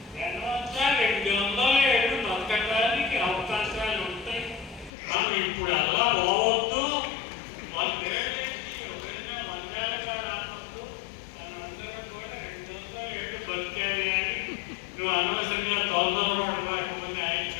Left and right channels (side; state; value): right; drops out; at 4.9 s